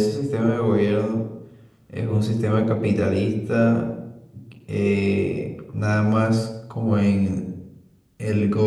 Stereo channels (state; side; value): identical; both; correlation 1.00